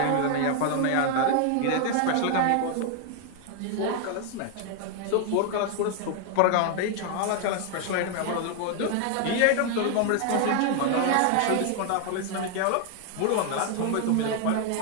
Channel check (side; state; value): both; different; correlation 0.00